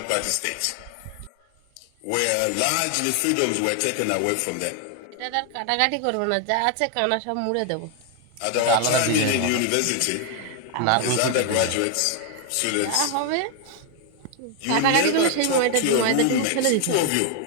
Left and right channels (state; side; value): different; both; correlation 0.01